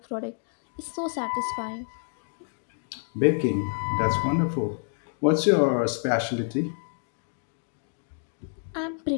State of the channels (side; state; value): right; silent; digital silence